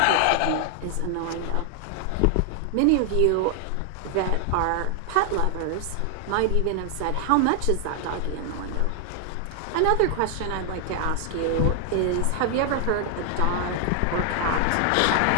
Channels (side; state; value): both; different; correlation 0.00